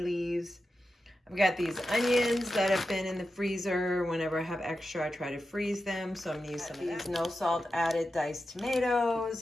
leaves. I've got these onions that have been in the freezer. Whenever I have extra, I try to freeze them. So I'm gonna use some of these no salt added diced tomatoes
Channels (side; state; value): both; normal; correlation 0.90